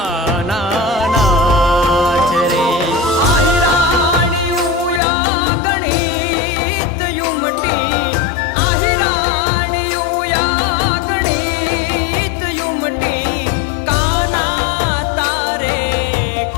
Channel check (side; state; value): right; drops out; at 5.0 s